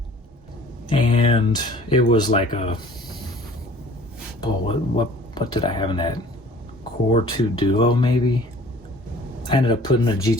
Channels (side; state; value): both; normal; correlation 0.50